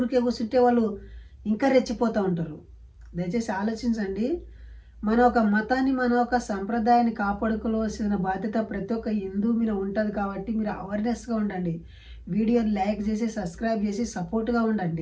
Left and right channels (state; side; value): identical; both; correlation 1.00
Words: కూర్చుంటే వాళ్ళు ఇంకా రెచ్చిపోతూ ఉంటారు. దయచేసి ఆలోచించండి. మన ఒక మతాన్ని, మన ఒక సంప్రదాయాన్ని కాపాడుకోవాల్సిన బాధ్యత ప్రతి ఒక్క హిందూ మీద ఉంటుంది. కాబట్టి మీరు అవేర్నెస్గా ఉండండి, వీడియోని లైక్ చేసి సబ్స్క్రైబ్ చేసి సపోర్ట్గా